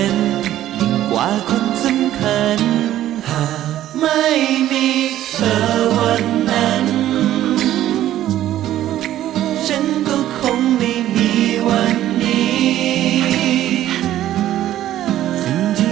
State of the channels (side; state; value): left; quieter; 12.9 dB